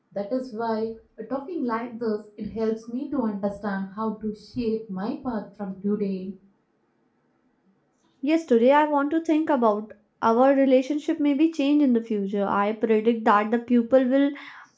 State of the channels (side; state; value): both; identical; correlation 1.00